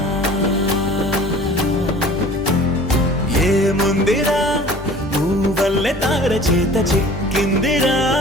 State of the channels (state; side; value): normal; both; correlation 0.46